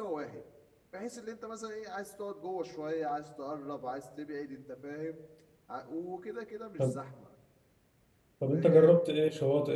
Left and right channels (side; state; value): both; identical; correlation 1.00